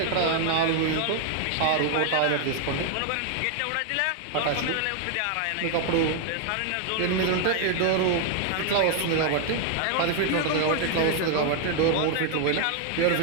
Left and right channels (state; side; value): different; both; correlation 0.00